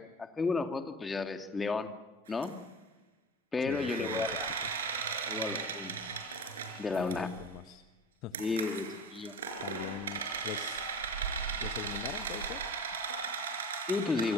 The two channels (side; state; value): both; normal; correlation 0.35